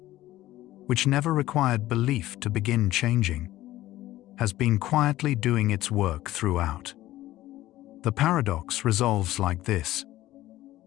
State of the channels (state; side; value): quieter; right; 15.4 dB